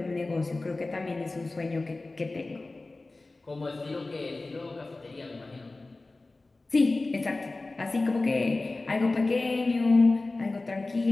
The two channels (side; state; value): right; quieter; 3.2 dB